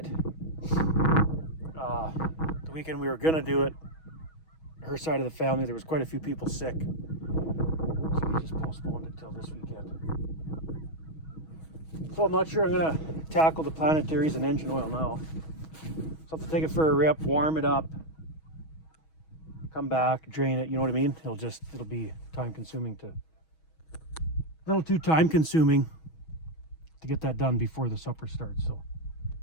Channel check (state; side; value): late; right; 6.2 ms